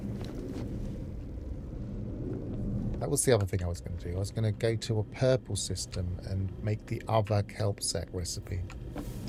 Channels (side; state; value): both; identical; correlation 1.00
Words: That was the other thing I was going to do. I was going to go to a purple system and make the other kelp sack recipe.